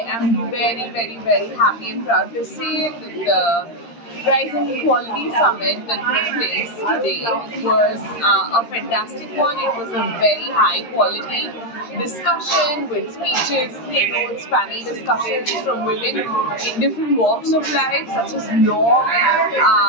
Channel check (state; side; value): late; right; 13 ms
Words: am very, very, very happy and proud to say that the Rising Equality Summit that took place today was a fantastic one. It was a very high quality discussion with speeches, keynotes, panel discussions from women in different walks of life, such as law,